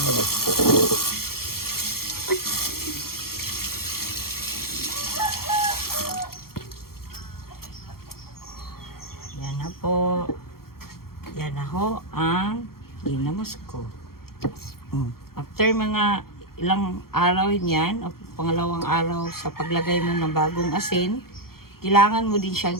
Yan na po. Yan na ho ang ginamos ko. After mga ilang araw niyan, o pangalawang araw sa paglagay mo ng bagong asin, kailangan mo din siyang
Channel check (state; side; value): late; right; 0.94 ms